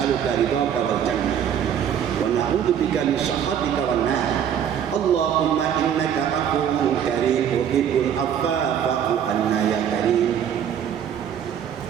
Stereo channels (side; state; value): left; quieter; 9.0 dB